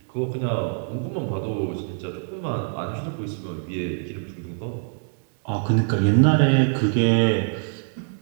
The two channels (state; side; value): silent; left; 62 dB below the other